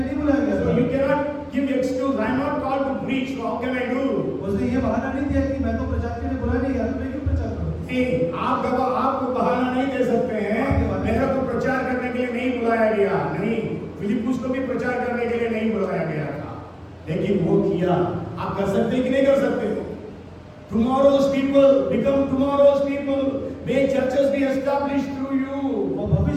नहीं बुलाया गया So you था cannot give excuse. I am not called to preach. So how can I do? उसने ये बहाना नहीं दिया कि मैं तो प्रचार के लिए बुलाया नहीं गया तो मैं क्यों प्रचार करूं नहीं, आपको बहाना नहीं दे सकते हैं. मेरा तो प्रचार करने के लिए नहीं बुलाया गया. नहीं, फिलिपुस को भी प्रचार करने के लिए नहीं बुलाया गया था, लेकिन वो किया. आप कर सकते हैं कि नहीं कर सकते? Tomorrow's people become tomorrow's people. May churches be established through you. और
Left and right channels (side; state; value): both; identical; correlation 1.00